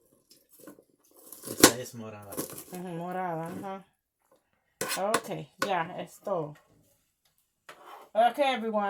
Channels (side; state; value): both; identical; correlation 1.00